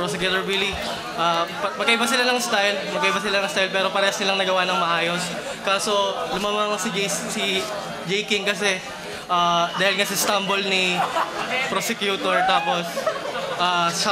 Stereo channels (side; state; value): both; identical; correlation 1.00